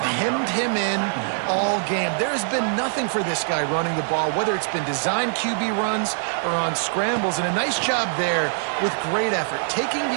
him in all game. There has been nothing for this guy running the ball, whether it's been designed QB runs or on scrambles. And a nice job there with great effort. Taking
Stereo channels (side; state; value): left; silent; 63 dB below the other